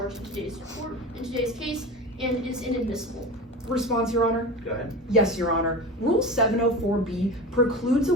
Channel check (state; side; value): normal; both; correlation 0.28